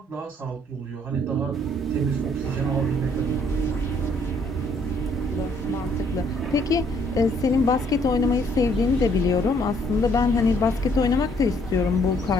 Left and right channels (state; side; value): normal; both; correlation 0.66